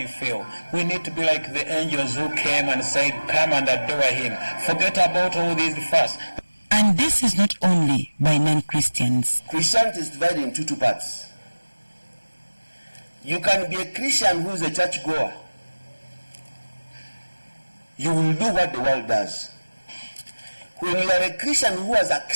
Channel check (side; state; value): both; inverted; correlation -1.00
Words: I feel. We need to be like the angels who came and said, "Come and adore him. Forget about all these first." And this is not only by non-Christians. Christianity is divided into two parts. You can be a Christian who is a church goer. You will do what the world does. When you are a Christian who has